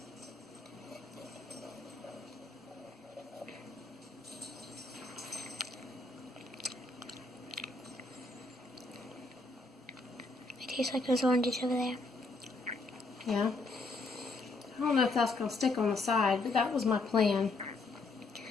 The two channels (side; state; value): right; quieter; 3.4 dB